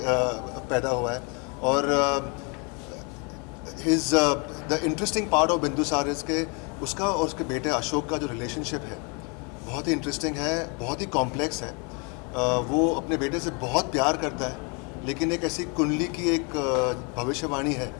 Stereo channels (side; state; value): right; quieter; 33.5 dB